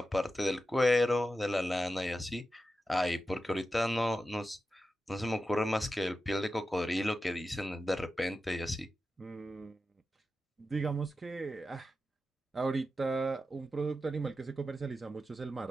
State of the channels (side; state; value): both; normal; correlation 0.91